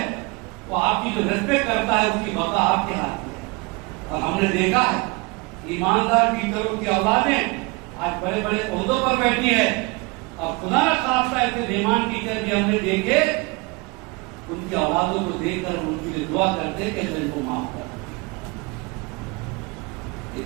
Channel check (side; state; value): left; quieter; 27.0 dB